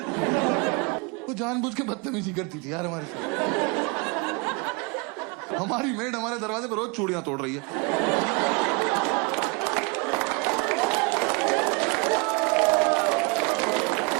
वो जानबूझ के बदतमीजी करती थी यार हमारे साथ। हमारी मेड हमारे दरवाजे पर रोज चूड़ियां तोड़ रही है।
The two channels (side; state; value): left; quieter; 28.6 dB